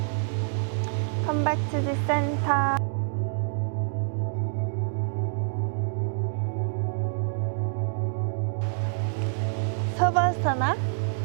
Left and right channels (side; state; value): left; silent; digital silence